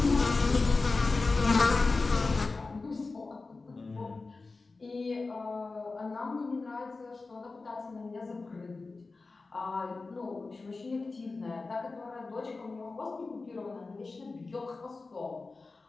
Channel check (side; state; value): right; quieter; 3.8 dB